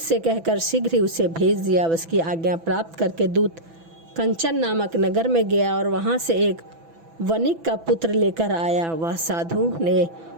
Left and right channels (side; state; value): left; late; 6.0 ms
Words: कहकर शीघ्र ही उसे भेज दिया। उसकी आज्ञा प्राप्त करके दूत कंचन नामक नगर में गया और वहां से एक वणिक का पुत्र लेकर आया। वह साधु ने